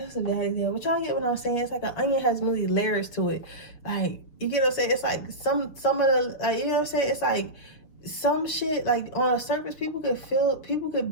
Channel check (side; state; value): right; late; 6.4 ms